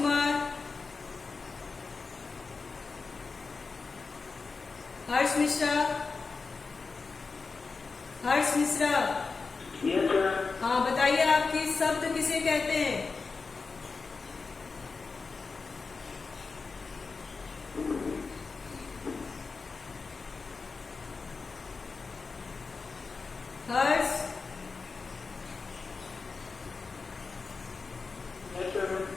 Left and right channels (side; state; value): right; quieter; 4.4 dB